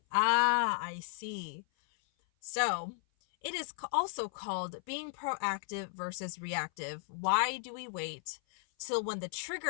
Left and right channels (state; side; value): silent; right; 54 dB below the other